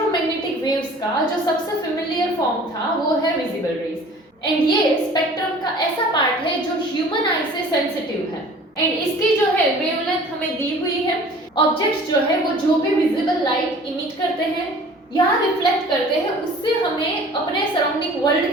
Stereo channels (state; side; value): normal; both; correlation 0.47